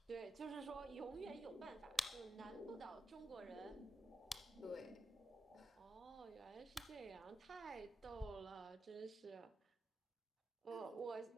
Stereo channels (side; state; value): both; normal; correlation 0.87